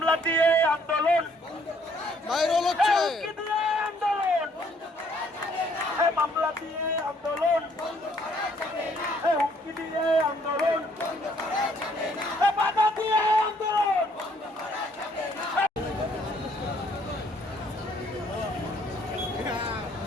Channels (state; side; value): normal; both; correlation 0.65